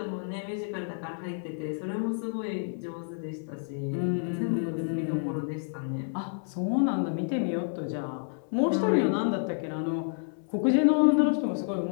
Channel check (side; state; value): right; silent; 58 dB below the other